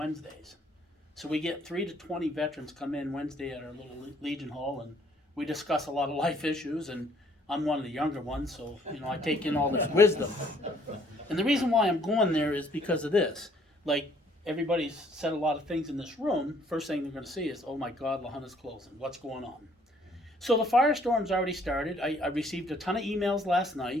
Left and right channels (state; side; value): normal; both; correlation 0.62